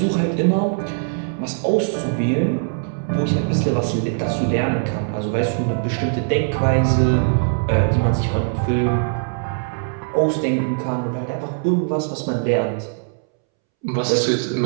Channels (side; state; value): left; silent; 65 dB below the other